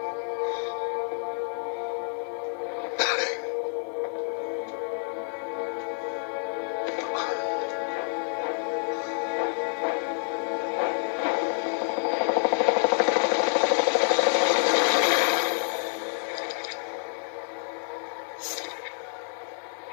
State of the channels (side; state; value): right; silent; 59 dB below the other